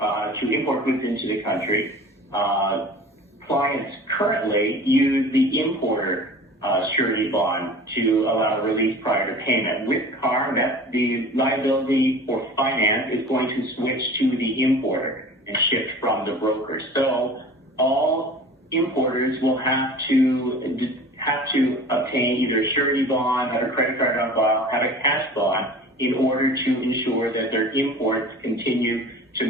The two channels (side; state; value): both; normal; correlation 0.41